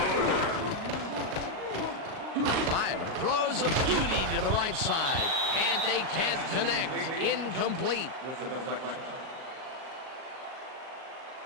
Fire throws a beauty to the right side, and they can't connect. Incomplete.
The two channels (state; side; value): late; left; 38 ms